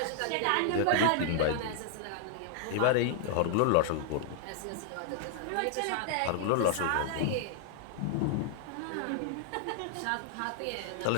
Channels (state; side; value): different; both; correlation -0.01